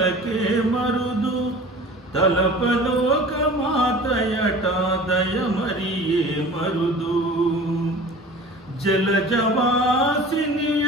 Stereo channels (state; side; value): normal; both; correlation 0.41